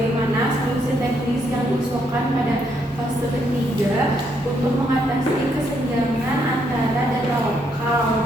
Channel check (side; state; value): both; normal; correlation 0.74